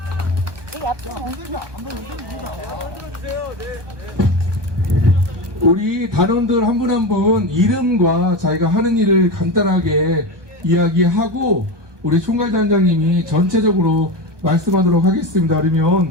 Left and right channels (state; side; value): late; left; 1.2 ms